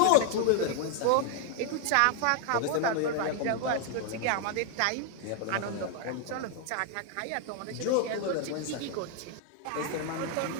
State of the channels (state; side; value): different; both; correlation 0.00